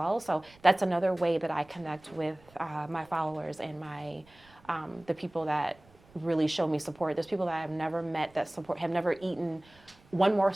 So that's another way that I connect with my followers and my the people that really show me support. There's people that I've never met that have never eaten one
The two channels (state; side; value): noise; right; rumble, 28 dB below the sound